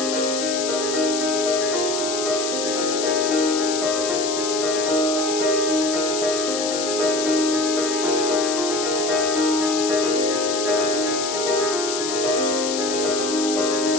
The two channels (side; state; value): left; noise; hiss, 4 dB below the sound